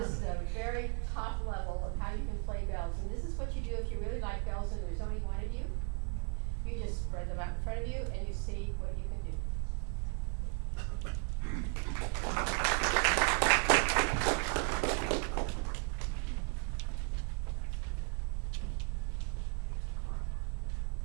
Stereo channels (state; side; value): quieter; left; 35.3 dB